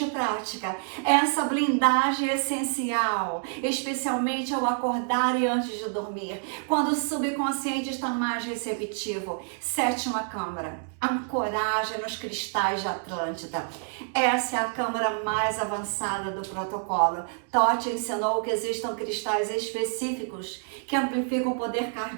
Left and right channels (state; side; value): silent; left; 60 dB below the other